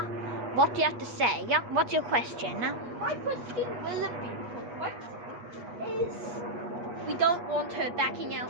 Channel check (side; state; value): left; late; 8.4 ms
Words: What do you have to say? What's your question? My question will be, what is... We don't want her backing